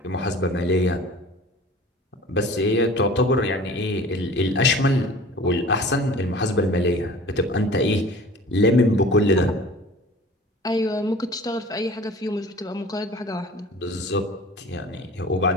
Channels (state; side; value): normal; both; correlation 0.43